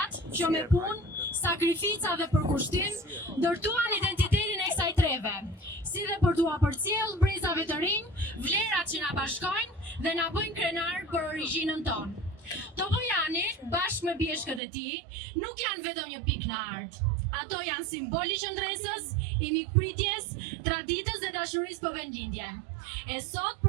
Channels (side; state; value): left; drops out; at 14.6 s